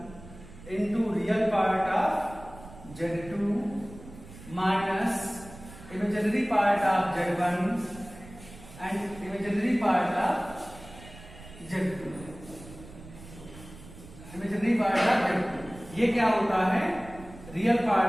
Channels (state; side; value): noise; right; rumble, 17 dB below the sound